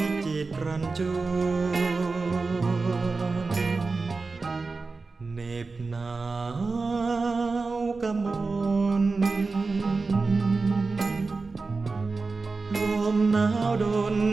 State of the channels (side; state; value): left; quieter; 4.0 dB